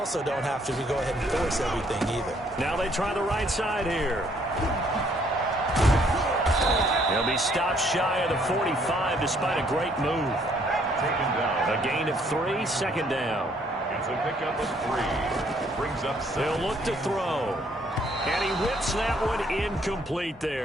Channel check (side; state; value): both; normal; correlation 0.65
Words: don't have to go ahead and force everything either. Now they try the right side here. He'll be stopped shy of the 45 despite a great move. Taken down. A gain of 3, 2nd down. It's a pickup of 3. Brings up 7. They'll look to throw. And he whips that one incomplete